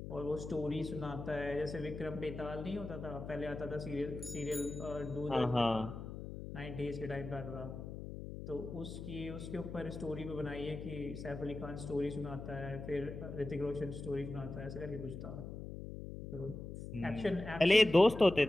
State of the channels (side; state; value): left; noise; hum, 9 dB below the sound